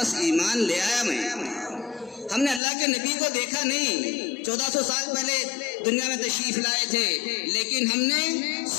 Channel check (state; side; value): drops out; right; at 2.6 s